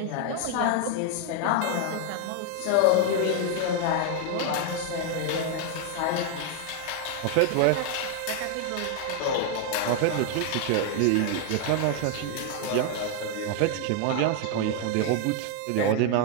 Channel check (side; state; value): both; different; correlation 0.00